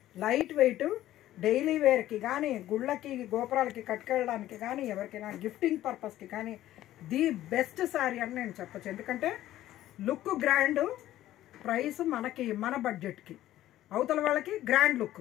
లైట్ వెయిట్, డైలీ వేర్కి కానీ, గుళ్ళకి గోపురాలకి కట్టుకెళ్ళడానికి కానీ, ఎవరికైనా గిఫ్టింగ్ పర్పస్కి కానీ ది బెస్ట్ శారీ అని నేను చెప్పచ్చు. ఎందుకంటే లుక్ గ్రాండ్, ప్రైస్ మనకి మన బడ్జెట్కి, అవతల వాళ్ళకి గ్రాండ్ లుక్,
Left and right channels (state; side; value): quieter; right; 13.9 dB